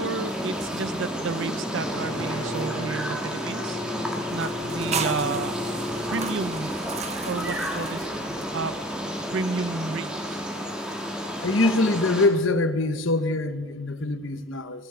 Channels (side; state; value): both; normal; correlation 0.42